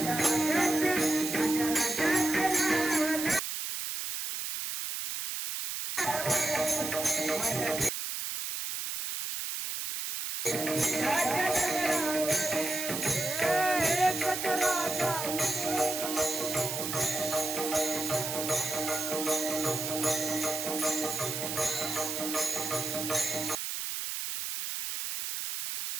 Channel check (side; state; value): right; noise; hiss, 4 dB below the sound